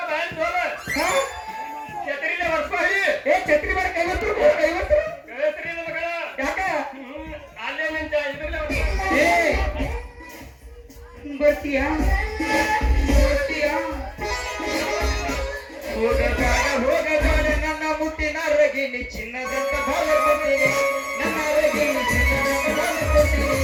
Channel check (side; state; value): both; identical; correlation 1.00